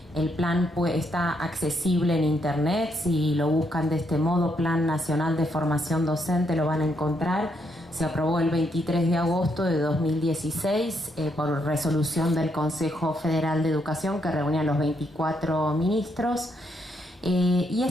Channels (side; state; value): both; normal; correlation 0.76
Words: El plan está accesible en internet. Si lo buscan de este modo, Plan Nacional de Formación Docente, lo van a encontrar. Se aprobó el 23 de agosto de 2016 por resolución del Consejo Federal de Educación, que reunía a los 24 ministros. Y